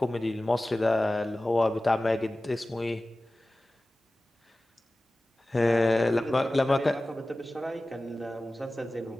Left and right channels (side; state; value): both; normal; correlation 0.96